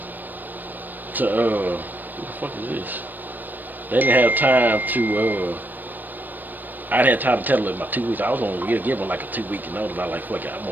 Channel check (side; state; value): left; late; 0.089 ms